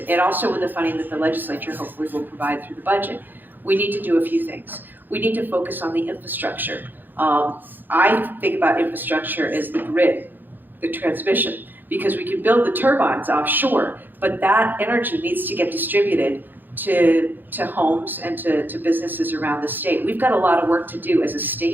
also with the funding that the legislature hopefully will provide through the budget, we need to do a few things. We need to focus on the infrastructure. I think about infrastructure as the grid, the transmission, because we can build the turbines offshore, but that energy needs to get distributed to homes and to businesses around the state. We've got a lot of work to do as a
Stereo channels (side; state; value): left; late; 0.090 ms